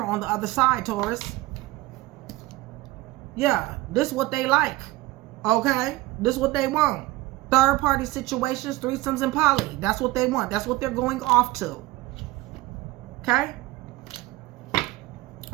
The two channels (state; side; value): quieter; left; 19.0 dB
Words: on the other side, Taurus. Yeah, this is what they like. Okay, this is what they want. Third-party situations, threesomes, and poly. That's what they want. That's what they're going off to. Okay.